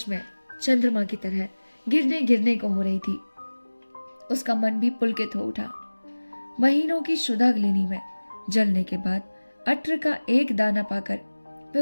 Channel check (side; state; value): both; inverted; correlation -1.00